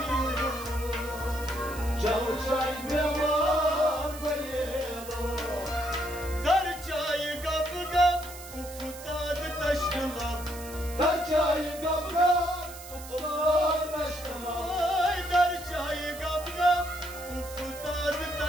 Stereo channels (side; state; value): right; noise; hiss, 14 dB below the sound